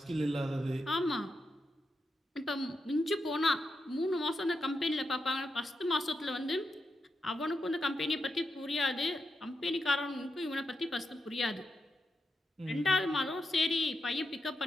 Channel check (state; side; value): normal; both; correlation 0.85